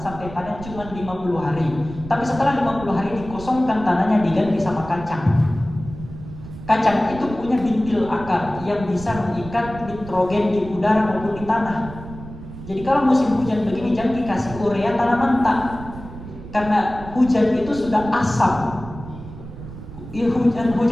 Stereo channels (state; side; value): noise; right; rumble, 13 dB below the sound